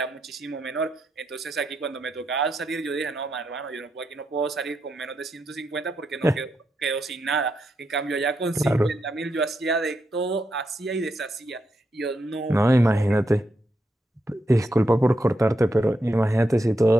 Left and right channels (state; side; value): normal; both; correlation 0.83